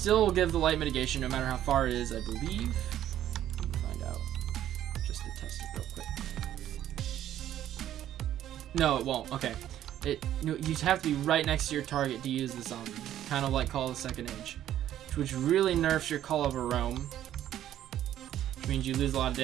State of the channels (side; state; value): left; quieter; 11.8 dB